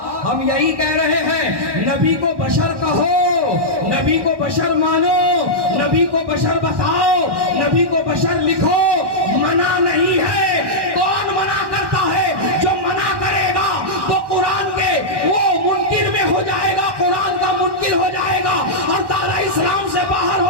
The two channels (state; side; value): late; left; 1.1 ms